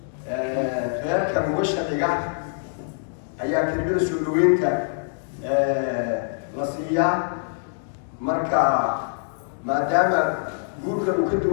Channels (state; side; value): silent; right; digital silence